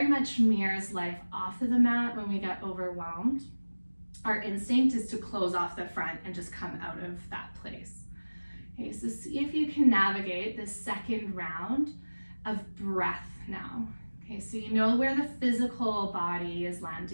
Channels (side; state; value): both; inverted; correlation -1.00